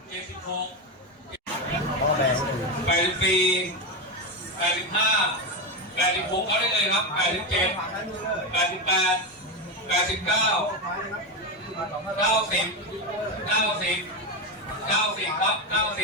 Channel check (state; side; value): normal; both; correlation 0.13